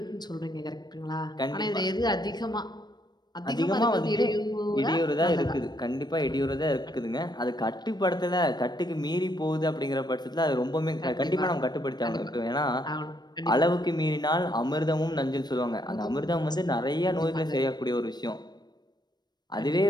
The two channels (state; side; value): late; right; 0.20 ms